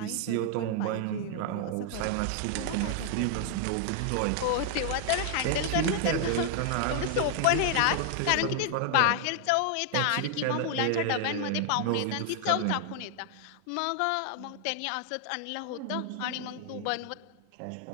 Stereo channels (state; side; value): different; both; correlation 0.00